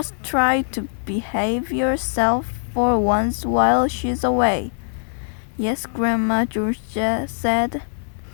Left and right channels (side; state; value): right; silent; 61 dB below the other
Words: try to behave yourself for once while she's away." "Yes, Grandma," George said.